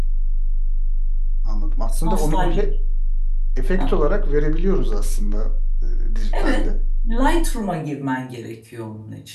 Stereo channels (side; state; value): both; identical; correlation 1.00